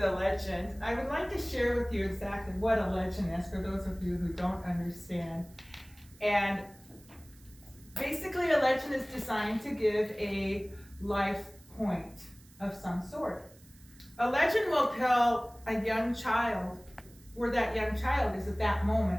legend, I would like to share with you exactly what a legend is for those of you who don't understand. And basically, a legend is designed to give a life point of some sort. A legend will tell a young child where that young child is at that moment,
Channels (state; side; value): noise; right; hiss, 26 dB below the sound